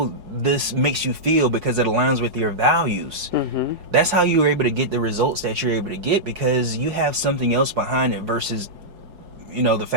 this makes you feel because it aligns with your values. Mm-hmm. That's how you're able to get the results that you're able to get, because you have something else behind it versus the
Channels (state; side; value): late; left; 4.7 ms